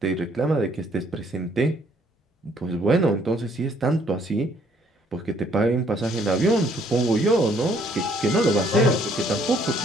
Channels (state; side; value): normal; both; correlation 0.64